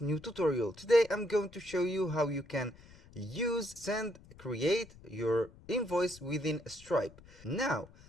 new tutorial. Today I'm going to show you how you can create your invoice within Stripe. Now,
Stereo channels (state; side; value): noise; left; rumble, 22 dB below the sound